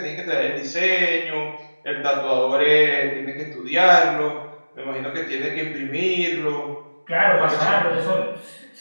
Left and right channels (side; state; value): both; inverted; correlation -1.00